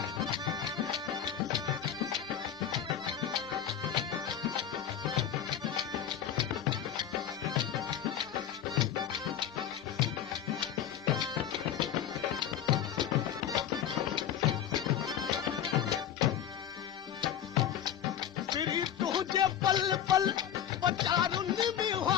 तुझे पल पल पचारुनि में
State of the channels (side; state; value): right; quieter; 9.6 dB